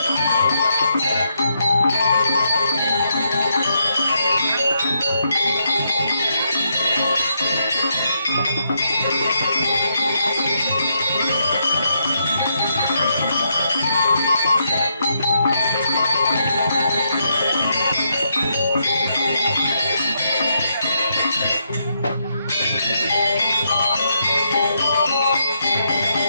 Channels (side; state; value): both; inverted; correlation -0.78